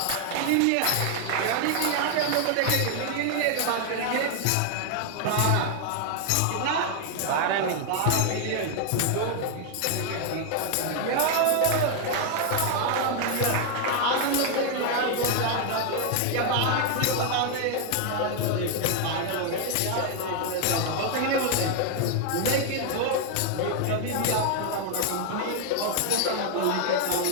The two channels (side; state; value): both; different; correlation 0.00